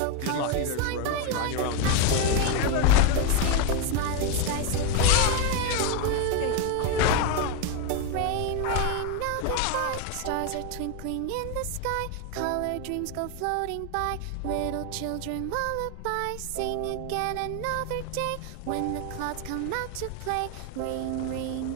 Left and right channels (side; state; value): both; different; correlation 0.02